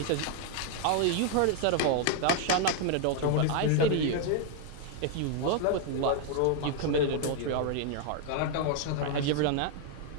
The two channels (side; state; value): both; different; correlation 0.00